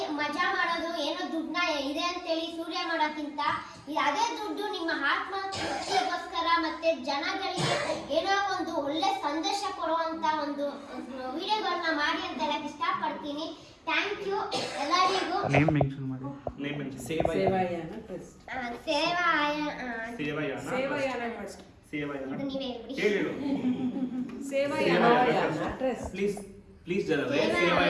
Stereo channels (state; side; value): identical; both; correlation 1.00